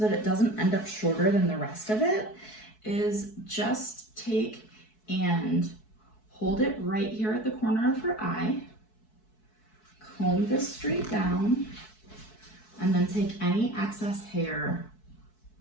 that it doesn't end up shorter than the rest of it is just take and hold it right here at the corner of her eye, comb this straight down, and then take any excess hair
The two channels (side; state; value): right; late; 4.6 ms